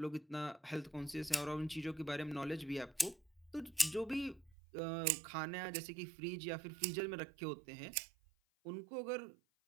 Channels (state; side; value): drops out; left; at 4.5 s